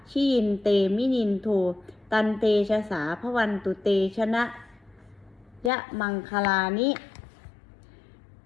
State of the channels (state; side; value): drops out; right; at 5.7 s